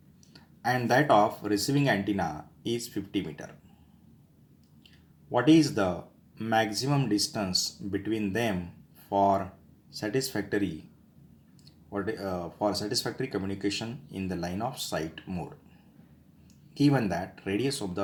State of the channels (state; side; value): identical; both; correlation 1.00